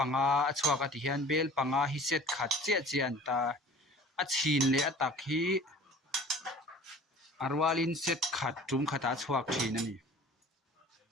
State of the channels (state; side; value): normal; both; correlation 0.45